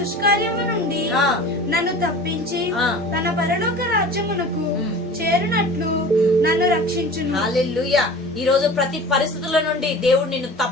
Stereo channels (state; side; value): normal; both; correlation 0.39